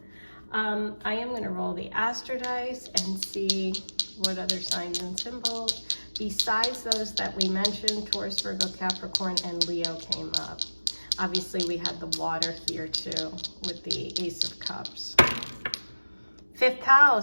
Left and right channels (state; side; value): inverted; both; correlation -1.00